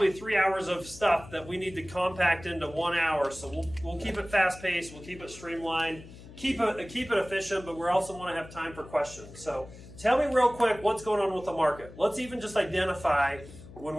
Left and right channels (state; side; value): noise; left; hum, 17 dB below the sound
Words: 3 hours of stuff that we need to compact into 1 hour. So we'll keep it fast-paced, we'll keep it streamlined, keep it efficient, but we also want to have time for questions. So tell me real quick what's going on with the market. Let's even just identify, when